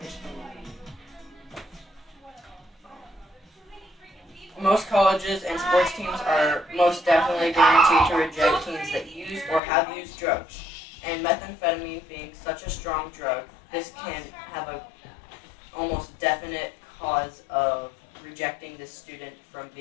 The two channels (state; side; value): drops out; right; at 9.6 s